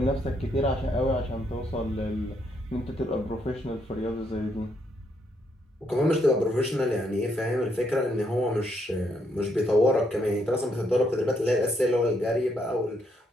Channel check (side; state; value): both; normal; correlation 0.74